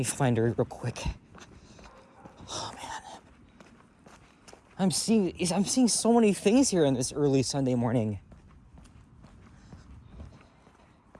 find her real quick. Oh man. I'm seeing so many things here on this early Sunday morning.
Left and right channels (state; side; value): identical; both; correlation 1.00